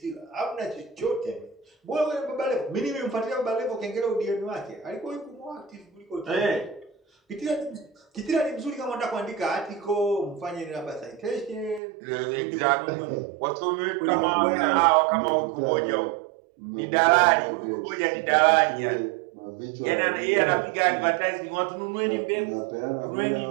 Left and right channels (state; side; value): drops out; left; at 11.8 s